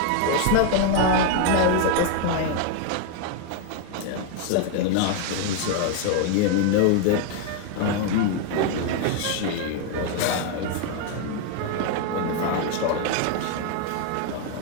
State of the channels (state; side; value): different; both; correlation 0.01